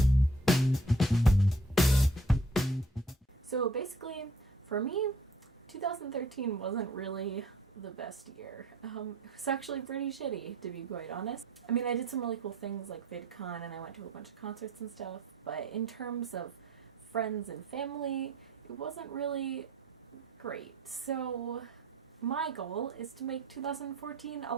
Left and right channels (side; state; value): both; normal; correlation 0.56